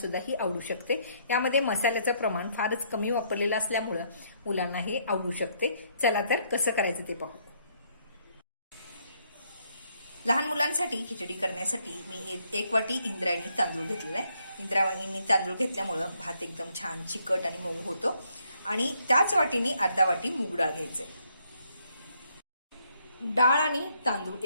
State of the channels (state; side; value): inverted; both; correlation -0.70